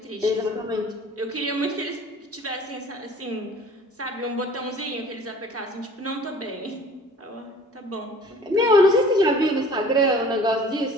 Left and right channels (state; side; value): normal; both; correlation 0.48